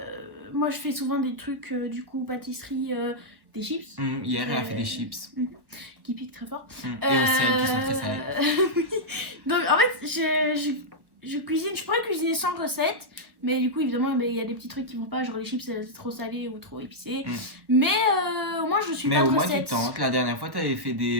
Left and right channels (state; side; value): late; left; 1.2 ms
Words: moi, je fais souvent des trucs, du coup, pâtisserie, des chips. Hier, elle a fait des chips. Qui piquent très fort. Et au sel, qui sont très salés. Oui. Donc, en fait, je cuisine, je pourrais cuisiner sans recette, mais du coup, évidemment, il y a des petits trucs qui vont pas, genre les chips, c'est trop salé ou trop épicé. Mais au moins, je suis Mais pas de au moins, tu recette. tentes. La dernière fois, tu avais fait